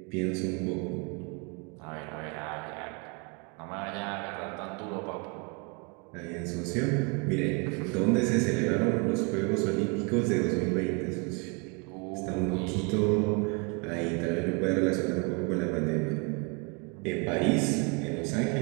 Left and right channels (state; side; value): quieter; left; 32.2 dB